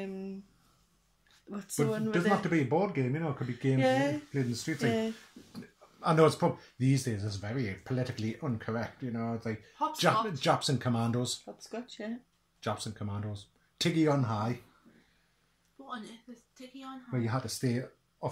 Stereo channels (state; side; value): identical; both; correlation 1.00